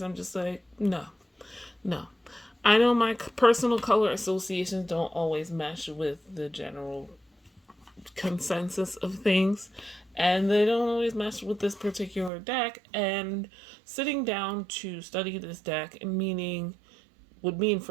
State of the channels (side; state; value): left; drops out; at 12.3 s